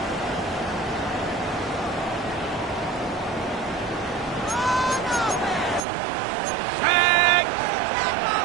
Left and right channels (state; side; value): drops out; left; at 5.9 s